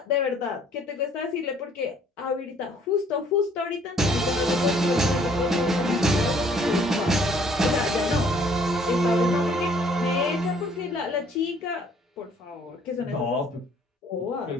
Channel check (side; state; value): both; normal; correlation 0.60